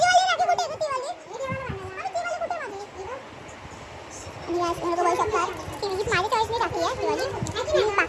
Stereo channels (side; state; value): both; identical; correlation 1.00